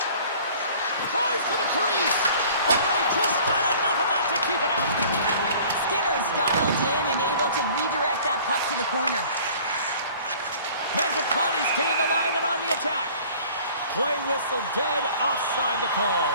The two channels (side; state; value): both; inverted; correlation -0.49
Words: Drives to the crease. Oh, he just got enough of that to keep it out. Skinner's dialed in and able to redirect that puck to the corner. Mangiapane's gained the line and on the attack. Play whistle dead, offside the call.